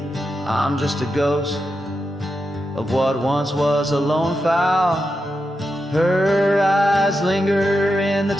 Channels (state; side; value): normal; both; correlation 0.87